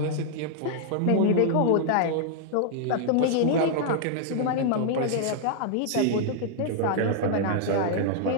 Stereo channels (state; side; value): different; both; correlation -0.01